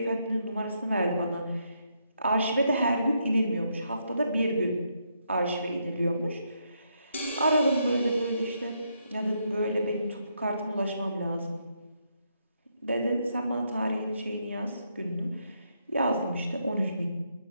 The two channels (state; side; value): inverted; both; correlation -0.77